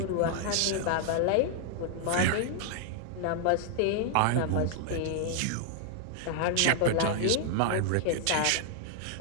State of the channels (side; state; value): both; different; correlation 0.00